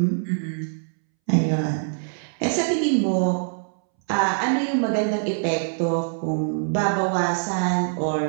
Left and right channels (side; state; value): left; silent; 63 dB below the other